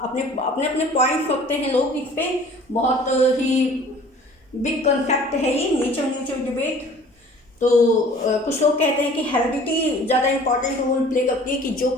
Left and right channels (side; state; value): both; normal; correlation 0.49